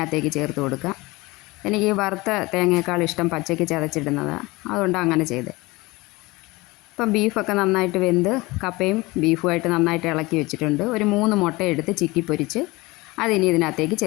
ചേർത്ത് കൊടുക്കാം. എനിക്ക് വറുത്ത തേങ്ങയേക്കാൾ ഇഷ്ടം പച്ചയ്ക്ക് ചതച്ചിടുന്നതാണ്, അതുകൊണ്ട് അങ്ങനെ ചെയ്തത്. ഇപ്പം ബീഫൊക്കെ നന്നായിട്ട് വെന്ത് കപ്പയും ബീഫുമായിട്ട് നന്നായിട്ട് ഇളക്കി വെച്ചിട്ടുണ്ട്. ഒരു 3 മുട്ട എടുത്ത് ചിക്കി പൊരിച്ച് അതിനി ഇതിനകത്തേക്ക്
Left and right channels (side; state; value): right; quieter; 22.3 dB